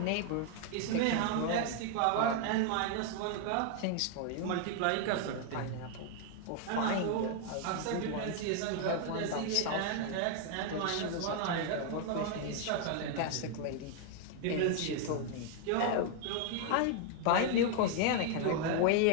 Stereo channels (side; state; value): both; different; correlation 0.00